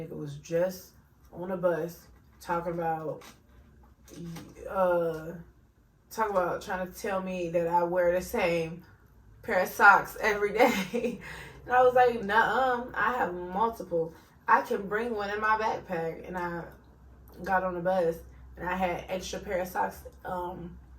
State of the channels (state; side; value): identical; both; correlation 1.00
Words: was just on a bus talking about trying to tell me that I wear the same pair of socks every day. And I was like, nuh-uh, I have multiple. I can bring one in my backpack. And I got on the bus and I had extra pair of socks,